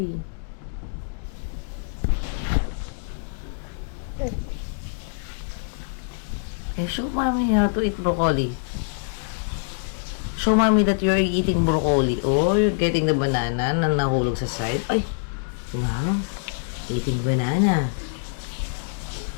Okay, show mommy how to eat broccoli. Show mommy that you're eating broccoli. Oh, you're getting the banana na nahulog sa side. Ay! Wow. Eating banana.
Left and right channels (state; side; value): silent; right; digital silence